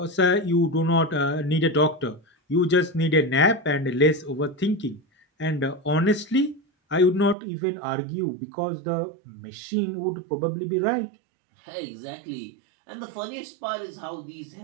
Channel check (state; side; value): drops out; left; at 7.4 s